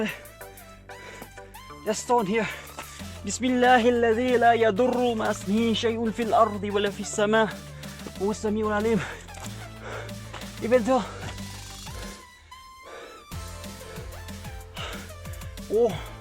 Just stone here. بسم الله الذي لا يضر مع اسمه شيء في الأرض ولا في السماء هو السميع العليم. Even though oh,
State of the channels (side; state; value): both; identical; correlation 1.00